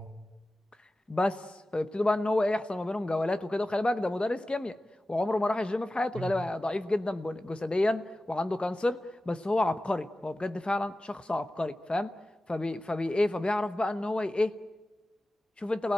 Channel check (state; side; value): normal; both; correlation 0.95